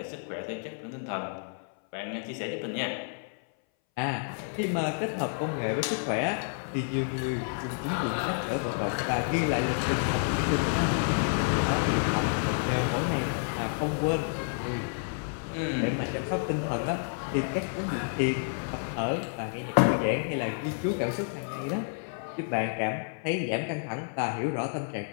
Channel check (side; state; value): right; silent; 58 dB below the other